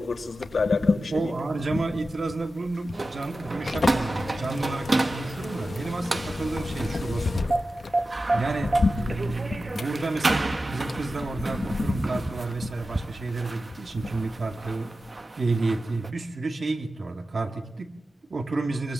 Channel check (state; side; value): normal; both; correlation 0.93